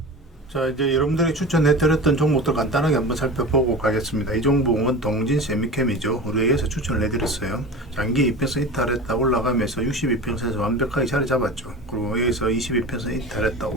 자, 이제 여러분들이 추천해드렸던 종목들 간단하게 한번 살펴보고 가겠습니다. 이 종목은 동진 세미캠이죠. 우리에게서 추천을 해드렸어요. 장기 이평선 이탈했다 올라가면서 62평선에서 완벽하게 자리 잡았죠. 그리고 여기서 22평선 이탈했다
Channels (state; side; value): normal; both; correlation 0.32